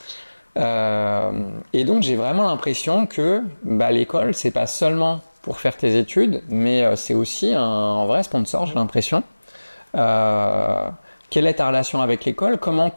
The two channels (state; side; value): inverted; both; correlation -1.00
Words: Et donc j'ai vraiment l'impression que l'école, c'est pas seulement pour faire tes études, mais c'est aussi un vrai sponsor, j'ai l'impression. Quelle est ta relation avec l'école? Comment